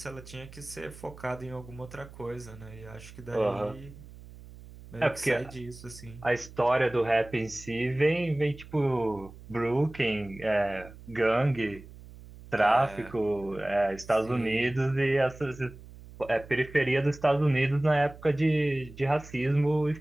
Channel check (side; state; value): right; noise; hum, 18 dB below the sound